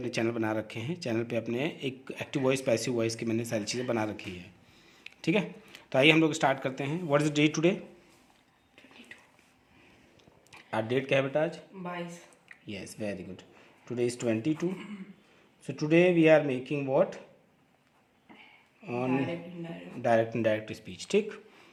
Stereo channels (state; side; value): identical; both; correlation 1.00